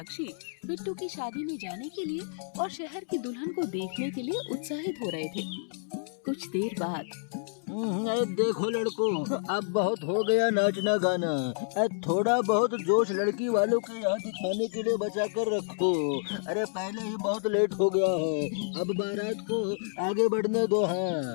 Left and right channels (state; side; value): silent; right; digital silence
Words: बिट्टू की शादी में जाने के लिए और शहर की दुल्हन को देखने के लिए उत्साहित हो रहे थे। कुछ देर बाद देखो लड़कों, अब बहुत हो गया नाचना गाना। थोड़ा बहुत जोश लड़की वालों के यहाँ दिखाने के लिए बचा कर रखो। अरे पहले ही बहुत लेट हो गया है, अब बारात को आगे बढ़ने दो।